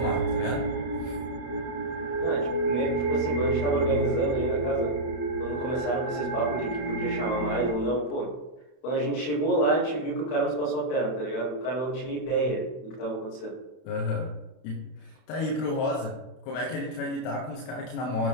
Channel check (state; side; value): late; right; 32 ms